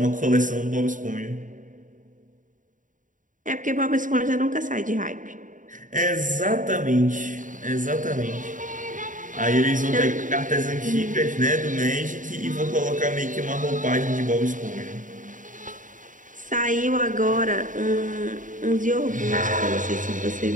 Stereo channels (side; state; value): left; late; 0.38 ms